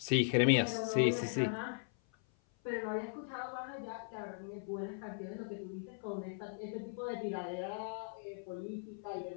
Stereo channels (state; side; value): silent; right; 52 dB below the other